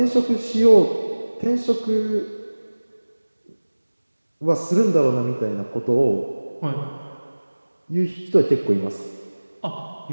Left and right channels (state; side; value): inverted; both; correlation -1.00